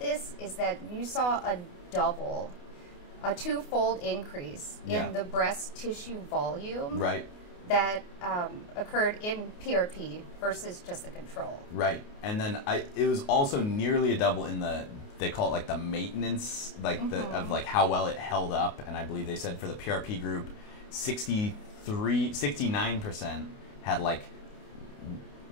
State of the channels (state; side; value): late; right; 28 ms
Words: is that you saw a twofold increase in the breast tissue volume Right. that occurred in PRP versus just the control. Right. And then it was also nearly a double in they call it like the maintenance, like of like how well it held up. And I believe they said for the PRP group, 69% had like